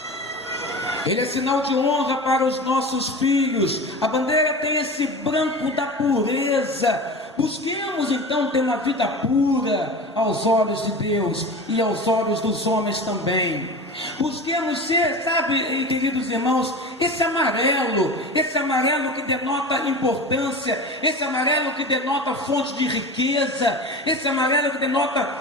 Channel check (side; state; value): both; normal; correlation 0.31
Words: Ele é sinal de honra para os nossos filhos. A bandeira tem esse branco da pureza. Busquemos então ter uma vida pura aos olhos de Deus e aos olhos dos homens também. Busquemos ser, sabe, queridos irmãos, esse amarelo que denota importância, esse amarelo que denota fonte de riqueza, esse amarelo que